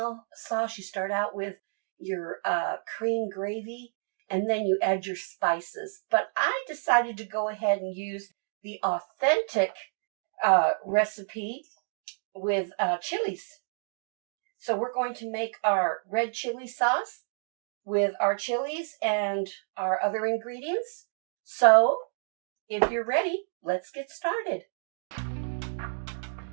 sauce. You start out with your cream gravy, and then you add your spices. But I decided to go ahead and use the authentic recipe with chilies. So we're going to make our red chili sauce with our chilies and our other ingredients. So if you're ready, let's get started.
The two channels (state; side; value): silent; left; digital silence